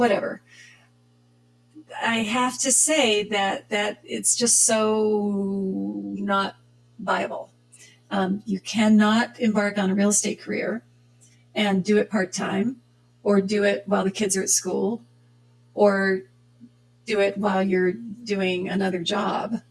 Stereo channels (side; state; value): both; identical; correlation 1.00